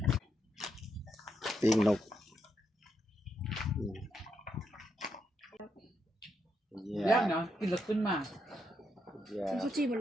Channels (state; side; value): normal; both; correlation 0.80